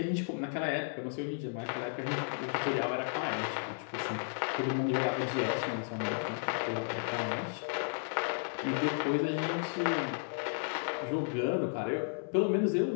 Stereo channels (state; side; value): silent; right; digital silence